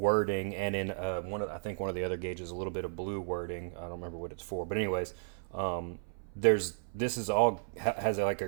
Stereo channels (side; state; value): left; silent; 55 dB below the other